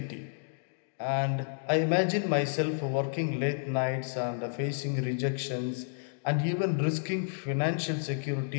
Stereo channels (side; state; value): right; silent; digital silence